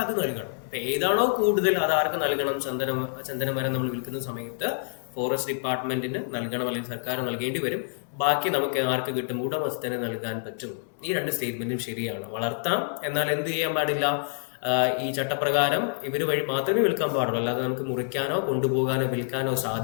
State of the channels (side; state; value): right; silent; digital silence